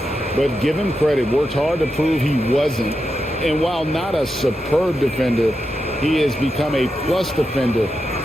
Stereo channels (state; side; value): normal; both; correlation 0.87